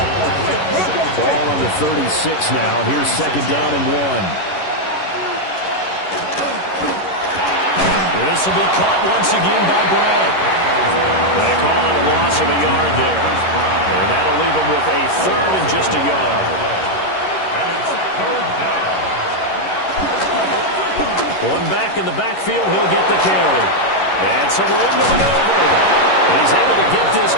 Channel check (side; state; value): right; late; 11 ms